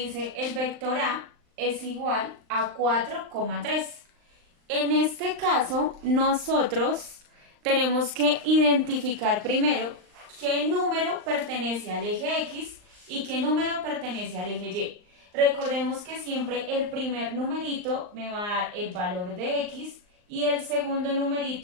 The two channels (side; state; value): left; late; 39 ms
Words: el vector A es igual a 4,3. En este caso, nosotros tenemos que identificar primero qué número pertenece al eje X y qué número pertenece al eje Y. Recordemos que siempre el primer numerito me va a dar el valor de X y el segundo